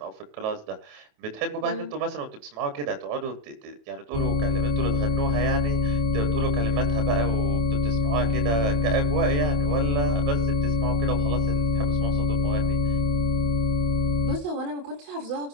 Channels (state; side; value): late; left; 28 ms